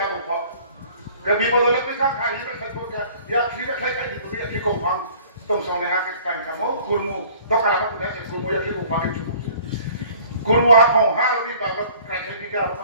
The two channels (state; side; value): inverted; both; correlation -0.52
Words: বলব বিপদলে পিঠা খাই বেখাই কোকে ইয়া খ্রি বেখাই খাই তো ইয়া কি কমফাম তং সনে হা কাই কামো কুরমু দকালা তো না কুরমু ইয়া কি কমফাম চুবু কুরমু হা খ হা রবি বাবা কাই খাই বিগা আর